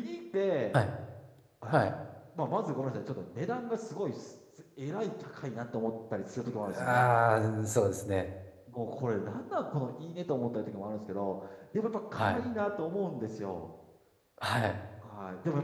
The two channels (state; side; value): identical; both; correlation 1.00